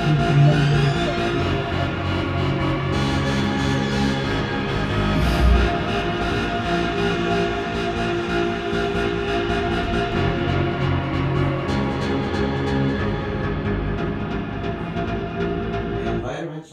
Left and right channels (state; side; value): identical; both; correlation 1.00